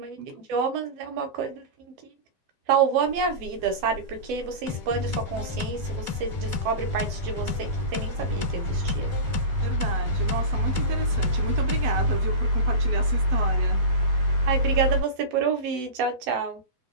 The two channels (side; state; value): left; late; 7.9 ms